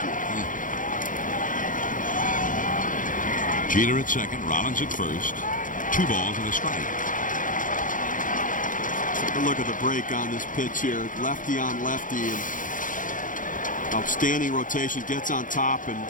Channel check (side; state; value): right; late; 0.38 ms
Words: year. Jeter at second, Rollins at first. 2 balls and a strike. Take a look at the break on this pitch here. Lefty on lefty, and outstanding rotation. Gets on top and